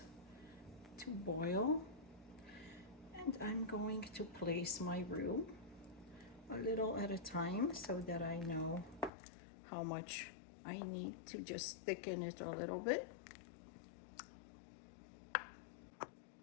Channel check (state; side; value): drops out; right; at 9.1 s